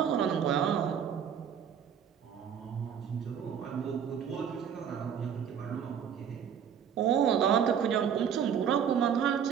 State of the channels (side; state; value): left; quieter; 8.1 dB